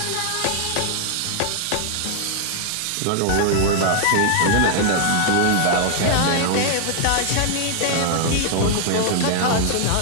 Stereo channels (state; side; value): different; both; correlation 0.00